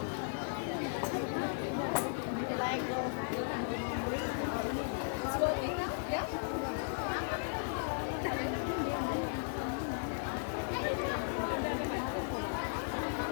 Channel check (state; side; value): silent; right; 54 dB below the other